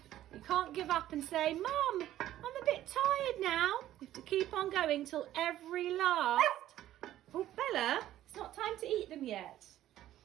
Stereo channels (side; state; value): left; quieter; 13.2 dB